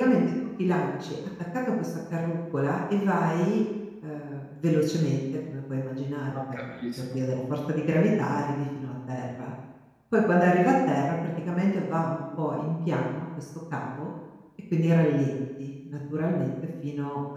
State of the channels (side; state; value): both; identical; correlation 1.00